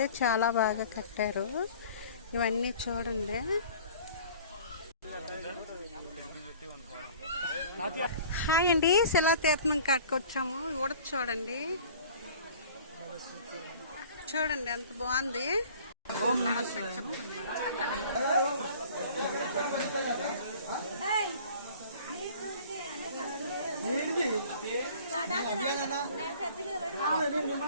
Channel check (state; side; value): inverted; both; correlation -0.48